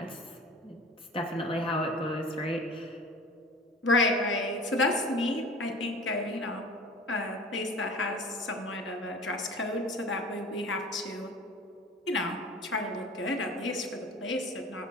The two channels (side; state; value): both; normal; correlation 0.40